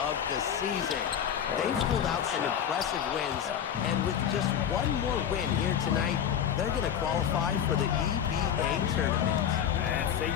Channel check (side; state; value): right; quieter; 8.9 dB